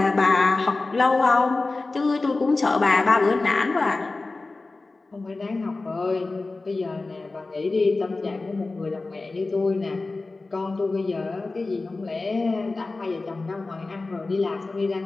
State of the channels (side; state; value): right; quieter; 3.4 dB